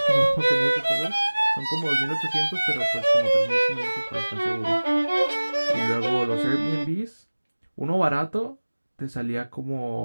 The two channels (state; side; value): inverted; both; correlation -1.00